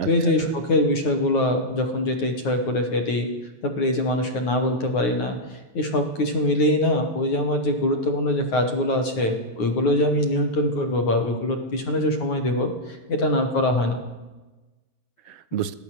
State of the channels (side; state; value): right; late; 9.4 ms